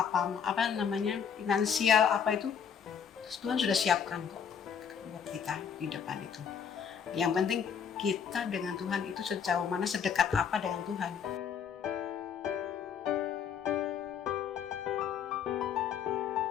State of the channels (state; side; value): quieter; right; 7.4 dB